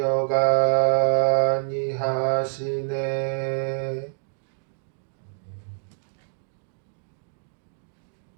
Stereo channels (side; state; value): left; silent; digital silence